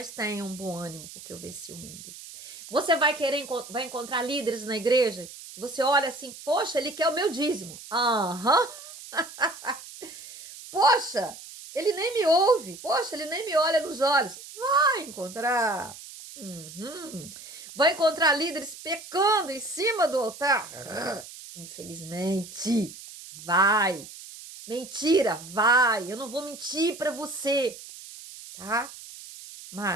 tenham um bom ânimo, porque eu venci o mundo. Você vai encontrar líderes na igreja, você olha assim, poxa, ele quer o meu dízimo. Aham. Poxa, ele nem me ouve. Poxa, ele nem me olha nos olhos. Vai encontrar. Uhum. Vai encontrar líderes pecando em cima do altar. Infelizmente, vai. Mentira, vai. Eu não vou mentir para você, tá?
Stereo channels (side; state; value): right; noise; hiss, 15 dB below the sound